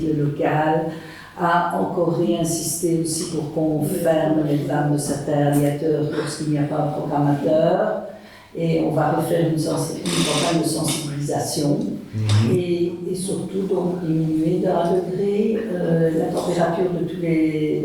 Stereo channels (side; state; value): both; identical; correlation 1.00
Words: le local, à encore réinsister aussi pour qu'on ferme les vannes de certains radiateurs lorsqu'il n'y a pas un programmateur. Et on va refaire une campagne de sensibilisation et surtout donc diminuer d'1 degré la température dans